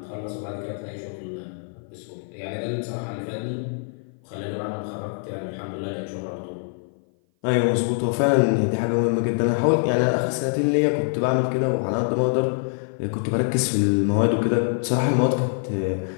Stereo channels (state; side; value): silent; right; 56 dB below the other